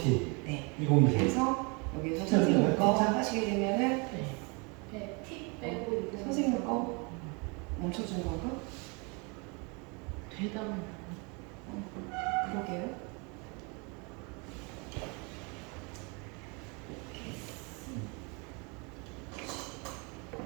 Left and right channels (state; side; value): quieter; left; 31.2 dB